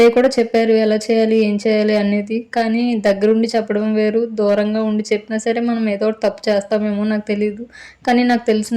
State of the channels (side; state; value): both; identical; correlation 1.00